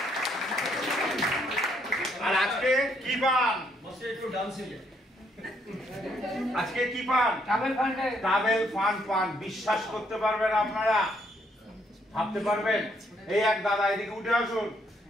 আর আজকে কি পান? বসে একটু ডান্সিং। আজকে কি পান? ট্রাভেল ফান্ড পান। বিশ্বাস করতে পারবেন আপনারা? ভাবতে পারবেন? এই এক দাদা এদিকে উঠে আসুন।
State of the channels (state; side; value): normal; both; correlation 0.71